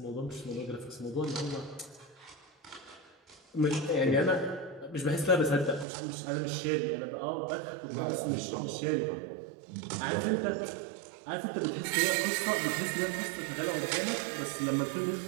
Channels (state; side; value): drops out; left; at 5.9 s